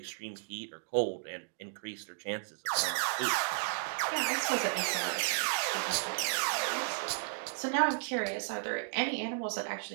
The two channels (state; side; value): silent; left; digital silence